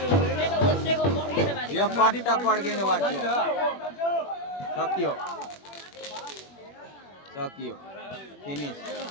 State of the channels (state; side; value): late; right; 21 ms